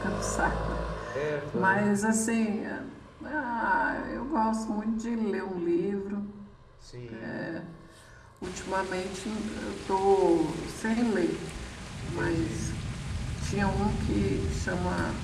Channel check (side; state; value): both; identical; correlation 1.00